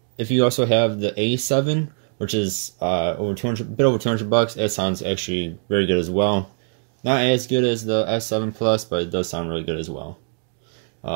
If you also have the A7, which is over 200, bit over $200, it sounds actually very good as well. Not as good as the S7 Plus, but it does sound really good as well.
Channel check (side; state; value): left; silent; 64 dB below the other